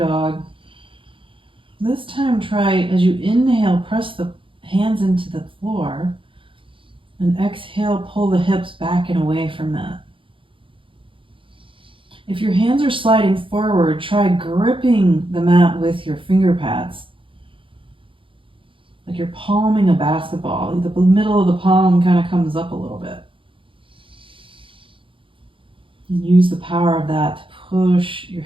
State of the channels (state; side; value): late; left; 0.25 ms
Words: This time try, as you inhale, press the hands into the floor. And exhale, pull the hips back and away from that. If your hands are sliding forward, try gripping the mat with your finger pads. Like you're palming a basketball. The middle of the palm kind of comes up a little bit. And use the power of that to push your